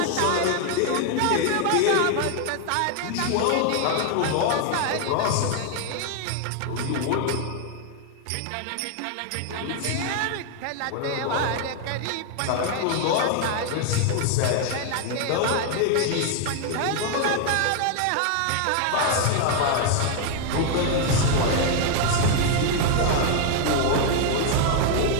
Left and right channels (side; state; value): both; different; correlation 0.00